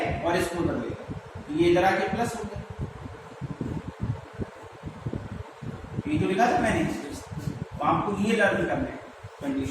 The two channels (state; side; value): identical; both; correlation 1.00